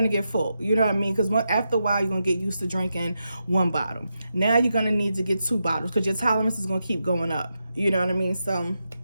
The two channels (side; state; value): both; inverted; correlation -0.86